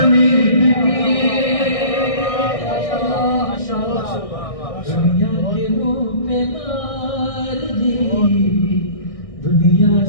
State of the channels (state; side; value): late; right; 1.6 ms